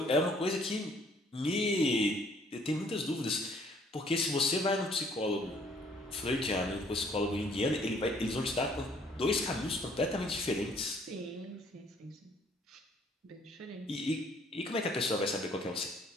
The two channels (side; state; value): both; normal; correlation 0.61